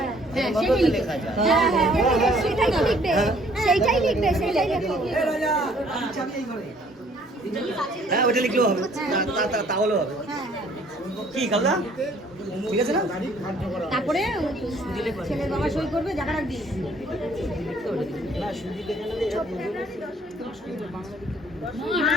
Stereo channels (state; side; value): normal; both; correlation 0.60